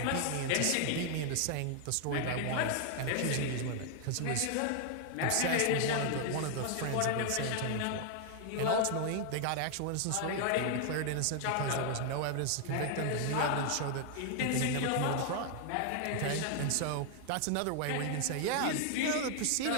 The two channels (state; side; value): different; both; correlation 0.00